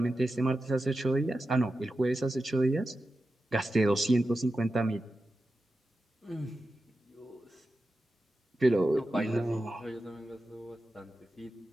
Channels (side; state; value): both; normal; correlation 0.91